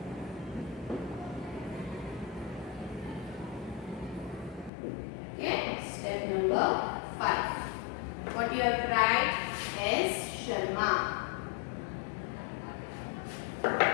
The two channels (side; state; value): right; drops out; at 4.7 s